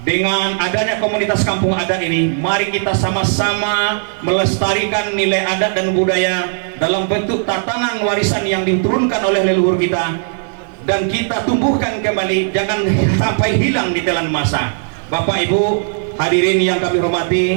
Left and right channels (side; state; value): left; silent; 67 dB below the other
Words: dengan adanya komunitas kampung adat ini, mari kita sama-sama melestarikan nilai adat dan budaya dalam bentuk tatanan warisan yang diturunkan oleh leluhur kita, dan kita tumbuhkan kembali, jangan sampai hilang di telan masa. Bapak Ibu hadirin yang kami